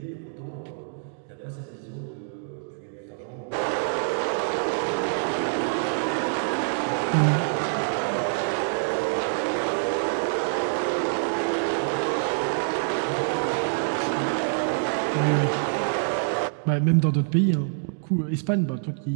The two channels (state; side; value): silent; left; digital silence